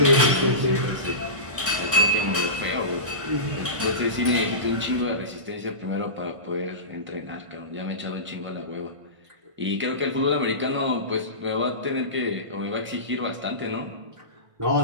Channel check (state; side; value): late; left; 1.5 ms